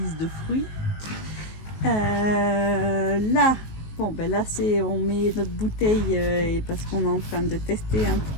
de fruits. Là, bon, ben là, on met notre bouteille et parce qu'on est en train de tester un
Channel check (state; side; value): late; right; 19 ms